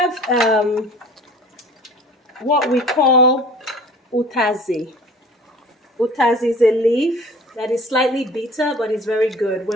what we call utazi. Utazi is a leaf that is slightly bitter, but it's very good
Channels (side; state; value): both; normal; correlation 0.46